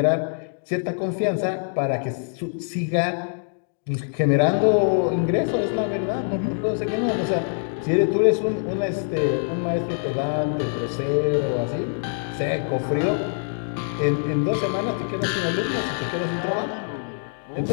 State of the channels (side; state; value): right; silent; digital silence